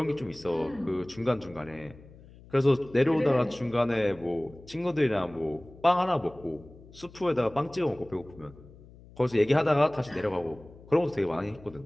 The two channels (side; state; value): left; noise; hum, 22 dB below the sound